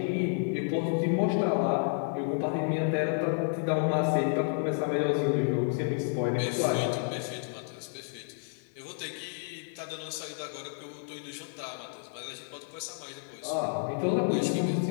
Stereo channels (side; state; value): right; silent; 57 dB below the other